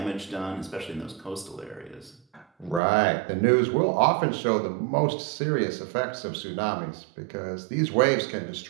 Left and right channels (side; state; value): left; drops out; at 2.8 s